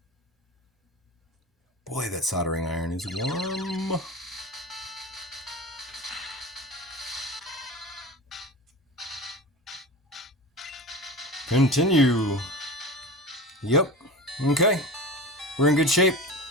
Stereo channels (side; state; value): both; normal; correlation 0.31